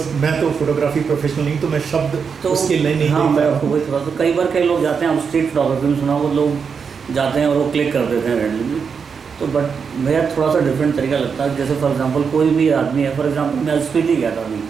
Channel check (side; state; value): left; quieter; 6.1 dB